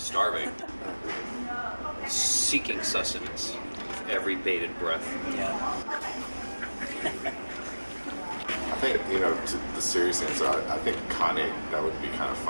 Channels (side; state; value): both; inverted; correlation -1.00